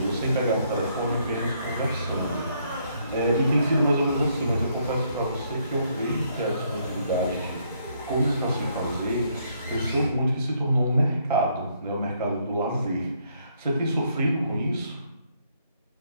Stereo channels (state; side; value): inverted; both; correlation -0.70